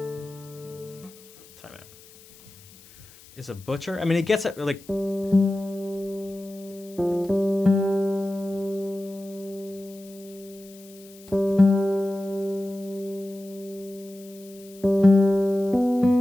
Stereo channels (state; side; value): noise; left; hiss, 23 dB below the sound